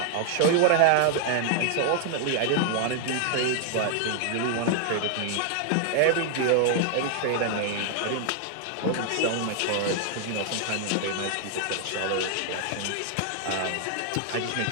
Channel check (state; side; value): different; both; correlation 0.00